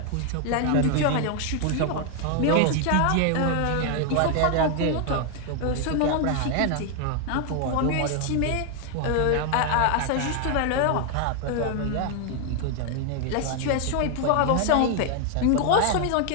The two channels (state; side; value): different; both; correlation 0.00